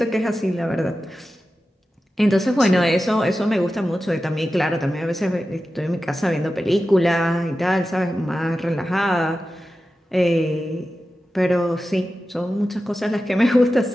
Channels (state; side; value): normal; both; correlation 0.93